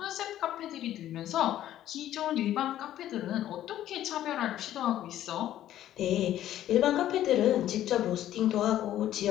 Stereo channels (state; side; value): quieter; right; 12.5 dB